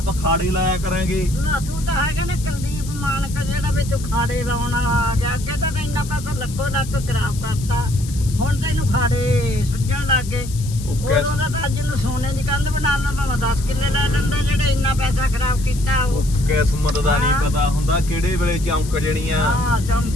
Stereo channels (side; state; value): left; noise; hiss, 15 dB below the sound